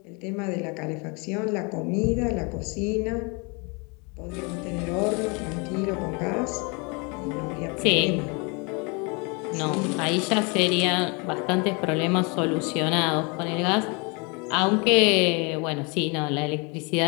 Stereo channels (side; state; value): right; quieter; 31.2 dB